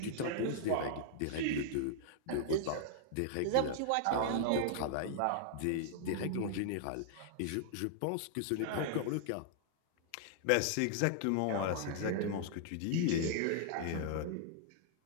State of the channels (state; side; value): different; both; correlation -0.01